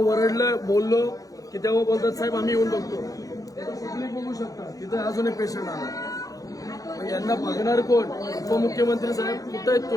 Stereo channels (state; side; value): late; right; 0.17 ms